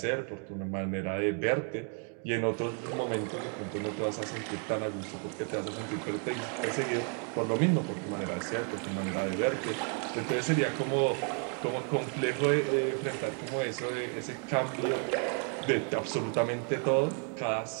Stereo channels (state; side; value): quieter; left; 38.7 dB